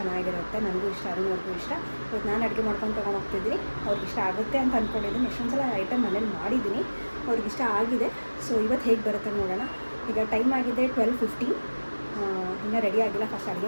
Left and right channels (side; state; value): both; inverted; correlation -1.00